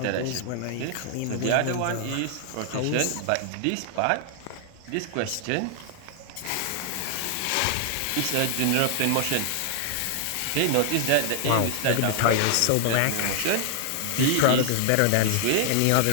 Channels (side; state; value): both; different; correlation 0.00